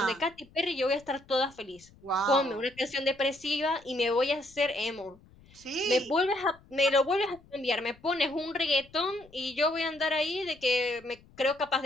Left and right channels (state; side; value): noise; left; rumble, 26 dB below the sound